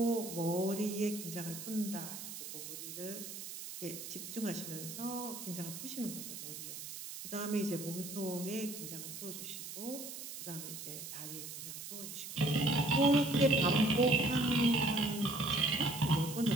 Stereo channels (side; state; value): right; noise; hiss, 9 dB below the sound